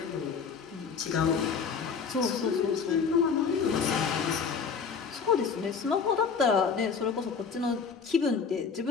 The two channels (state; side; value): quieter; right; 5.8 dB